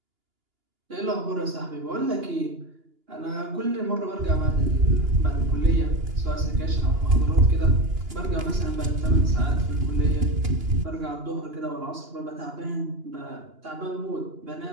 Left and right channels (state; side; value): late; left; 2.9 ms